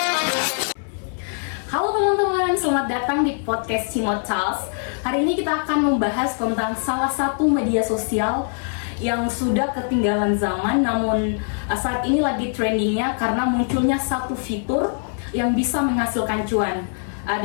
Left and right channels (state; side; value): silent; right; 61 dB below the other